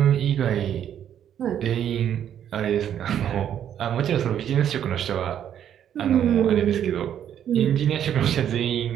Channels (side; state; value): left; quieter; 9.8 dB